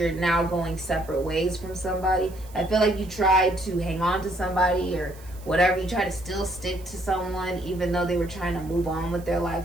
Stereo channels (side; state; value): right; noise; hiss, 23 dB below the sound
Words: now going separate ways from somebody. I feel like you tried to hang on to somebody or whatever. You try to still stick to someone even though they were trying to move on with their